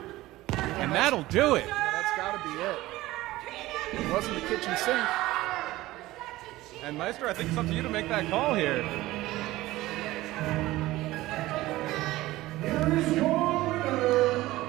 And that'll do it. Yeah, that's got to be it. It wasn't the kitchen sink. And Maestro, I think it's up to you to make that call here. Here is your winner,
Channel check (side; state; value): left; quieter; 17.5 dB